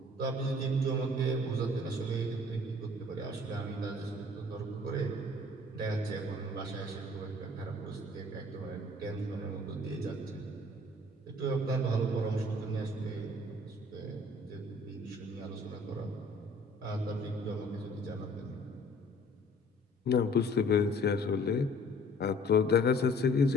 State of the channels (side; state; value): both; normal; correlation 0.53